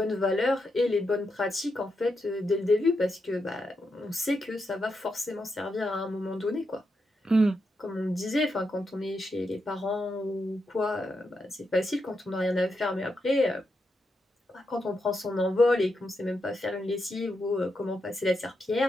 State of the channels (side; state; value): both; normal; correlation 0.84